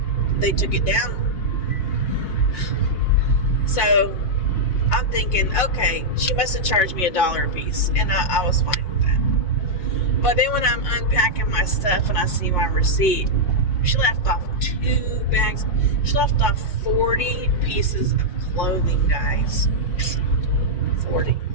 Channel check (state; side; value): late; right; 5.6 ms